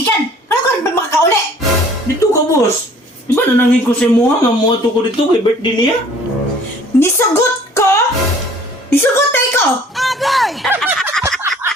Ano ka rin ba makakauli? Dito ka, boss. Di ba nanangin ko sa muha nga mo ato ko dito kay birthday niya? Nisugot ko? Nisugot tayo ko? Agay!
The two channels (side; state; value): both; normal; correlation 0.53